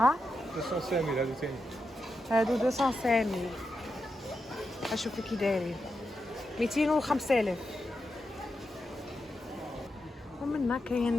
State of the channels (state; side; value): normal; both; correlation 0.87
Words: ها 200 هادو ثاني. هادو 200 اشوفوا كي دايرين 205,000. ومنا